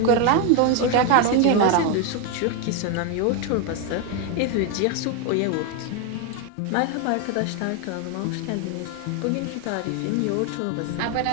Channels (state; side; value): different; both; correlation 0.01